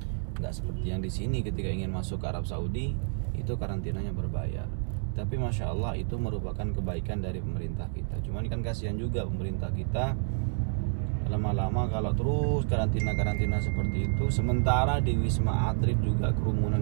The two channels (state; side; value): silent; left; 58 dB below the other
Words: Nggak seperti yang di sini ketika ingin masuk ke Arab Saudi itu karantinanya berbayar. Tapi Masya Allah itu merupakan kebaikan dari pemerintah kita. Cuman kan kasihan juga pemerintah kita, lama-lama kalau terus karantina seperti itu, sementara di Wisma Atlet juga